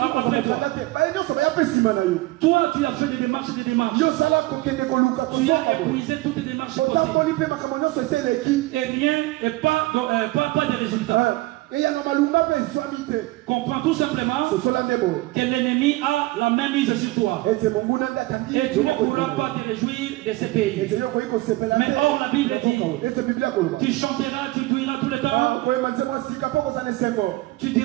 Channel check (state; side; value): quieter; left; 19.5 dB